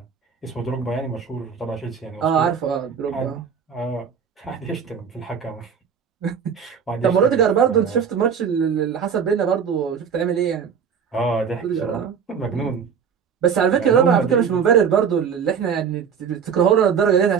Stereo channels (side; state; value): left; quieter; 7.0 dB